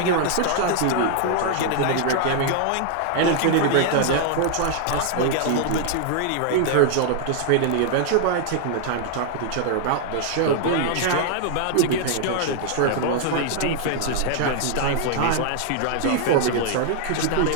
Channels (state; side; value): different; both; correlation 0.00